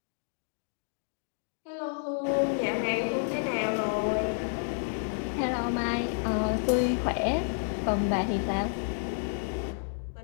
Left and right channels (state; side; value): silent; right; digital silence